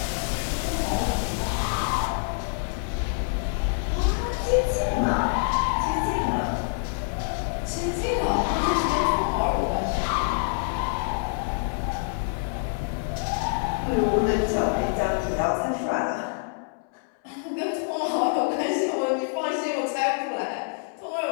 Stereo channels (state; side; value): silent; right; 61 dB below the other